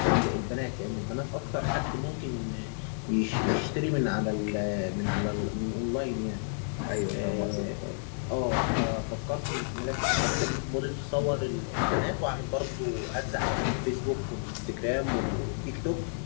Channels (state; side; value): silent; right; digital silence